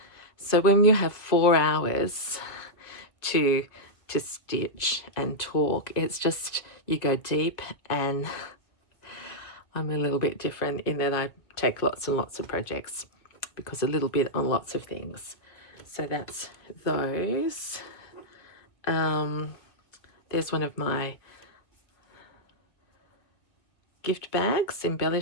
So when you have 4 hours to stitch and talk, it's just, you go deep, and I'm a little bit different in that I take lots and lots of projects because a little bit on lots of things. So that's those. There's one of my gift bags,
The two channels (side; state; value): right; late; 1.9 ms